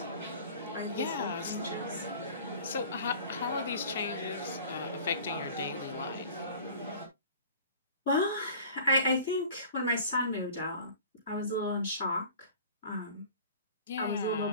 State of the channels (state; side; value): inverted; both; correlation -0.43